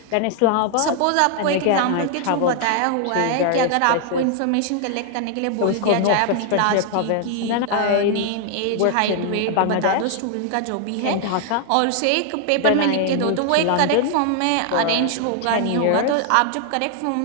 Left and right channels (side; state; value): both; different; correlation 0.00